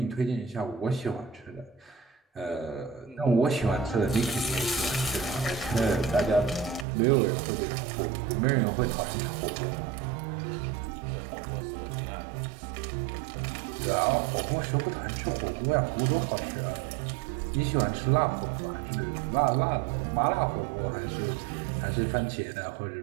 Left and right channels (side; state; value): left; drops out; at 6.9 s